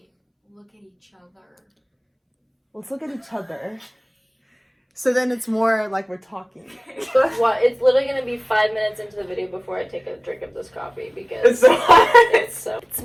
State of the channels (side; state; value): both; identical; correlation 1.00